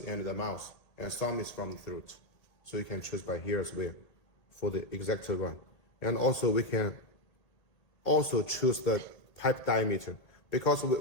the mouth, and some is from the throat. So you can choose by here as well for the exact one. And also we can also choose the pipe diameter, because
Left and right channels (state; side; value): late; right; 1.8 ms